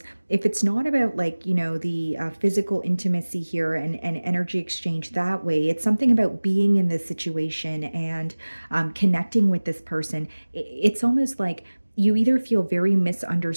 if it's not about like, the physical intimacy here and energy exchange that way, it's something about being in this situation and connecting with this person. It's almost like you either feel very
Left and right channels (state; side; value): inverted; both; correlation -1.00